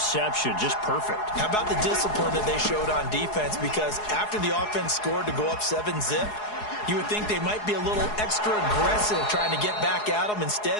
Just perfect. How about the discipline that they showed on defense? Because after the offense scored to go up 7-zip, you would think they might be a little extra aggressive trying to get back at them.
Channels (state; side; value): late; right; 4.8 ms